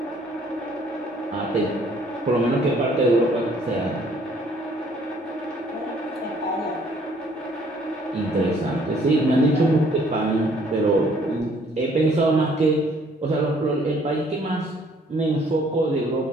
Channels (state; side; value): normal; both; correlation 0.61